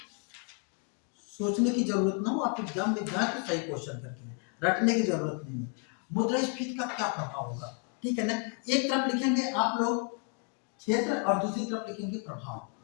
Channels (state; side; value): quieter; right; 36.1 dB